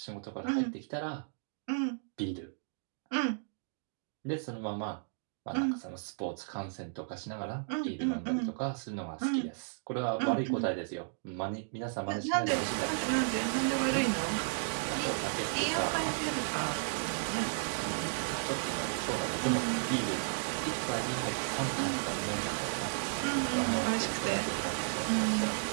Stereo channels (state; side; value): silent; left; digital silence